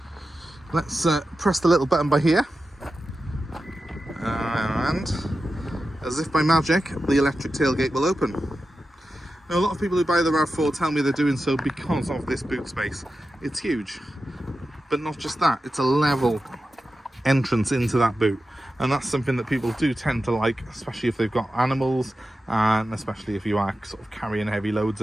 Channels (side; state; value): both; normal; correlation 0.92